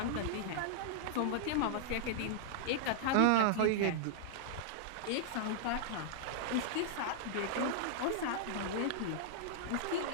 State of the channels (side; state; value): both; different; correlation -0.01